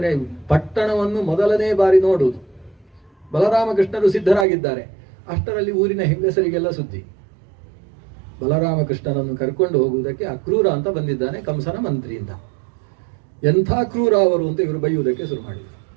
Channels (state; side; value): drops out; left; at 4.5 s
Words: ಪಟ್ಟಣವನ್ನು ಮೊದಲನೇ ಬಾರಿ ನೋಡುವುದು. ಬಲರಾಮಕೃಷ್ಣರು ಸಿದ್ಧರಾಗಿದ್ದಾರೆ. ಅಷ್ಟರಲ್ಲಿ ಊರಿನ ಹೆಂಗಸರಿಗೆಲ್ಲ ಸುದ್ದಿ, ಬಲರಾಮಕೃಷ್ಣನನ್ನು ಕರ್ಕೊಂಡು ಹೋಗುವುದಕ್ಕೆ ಅಕ್ರೂರ ಅಂತ ಬಂದಿದ್ದಾನೆ ಕಂಸನ ಮಂತ್ರಿಯಿಂದ. ಎಂಥ ಕ್ರೂರ ಅವರು ಅಂತ ಇವರು ಬೈಯುವುದಕ್ಕೆ ಶುರು ಮಾಡಿದರು.